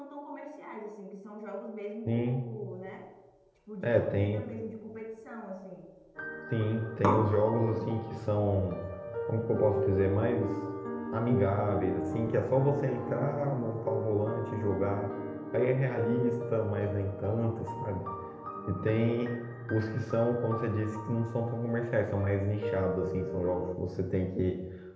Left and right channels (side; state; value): both; identical; correlation 1.00